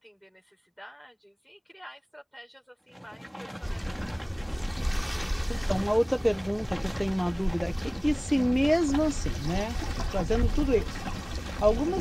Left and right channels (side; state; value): both; identical; correlation 1.00